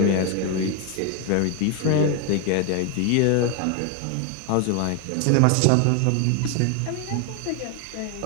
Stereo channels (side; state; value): both; different; correlation 0.01